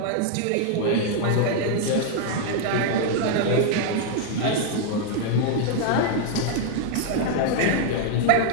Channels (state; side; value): different; both; correlation 0.00